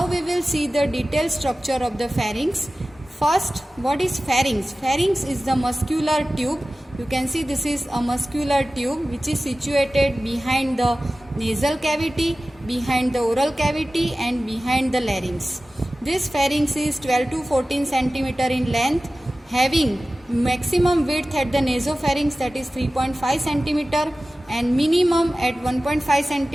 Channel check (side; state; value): both; normal; correlation 0.96